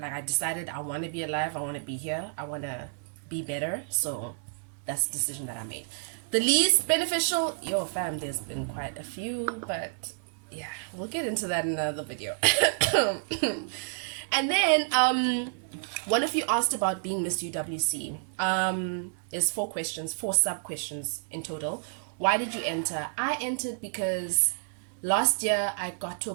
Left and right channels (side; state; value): left; silent; digital silence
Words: I decided I want to be alive, I want to be here, I want to be better, so that's the decision that I made. The least beneficial, fam, there's been quite a few, but yeah, we'll get into that in another video. And then one of you asked about being Miss UWC. There's 4 questions, 4 sub questions in total. Why did you enter? I entered because last year I got to a